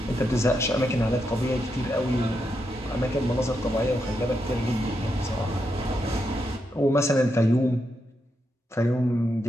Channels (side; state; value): both; normal; correlation 0.83